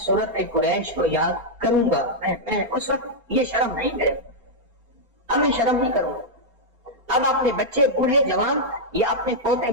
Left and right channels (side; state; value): left; late; 4.2 ms